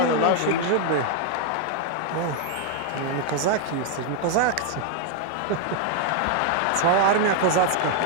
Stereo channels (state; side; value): different; both; correlation 0.00